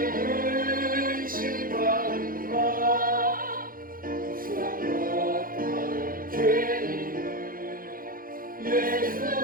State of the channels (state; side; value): late; left; 0.41 ms